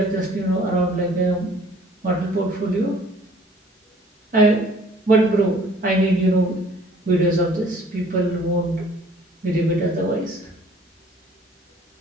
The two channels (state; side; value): normal; both; correlation 0.54